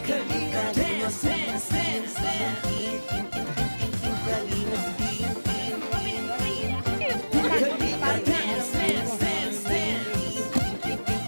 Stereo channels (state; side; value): inverted; both; correlation -1.00